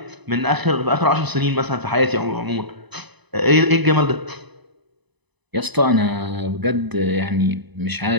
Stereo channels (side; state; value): left; late; 1.0 ms